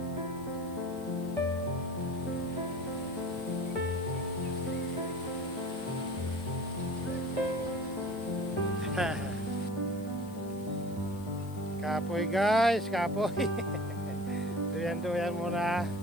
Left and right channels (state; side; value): noise; left; hiss, 22 dB below the sound